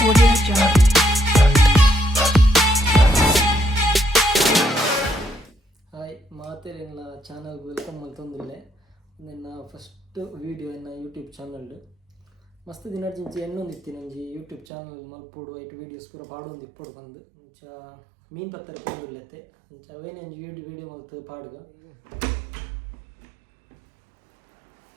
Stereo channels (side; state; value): left; drops out; at 14.7 s